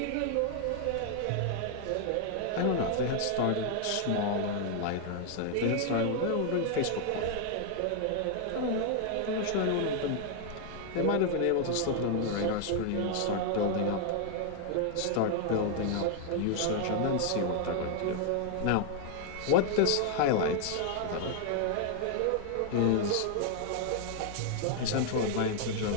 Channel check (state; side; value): different; both; correlation 0.00